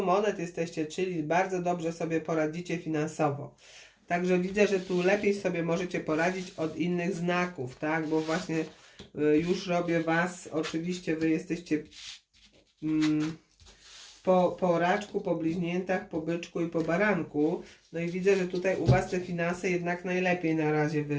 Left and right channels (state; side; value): identical; both; correlation 1.00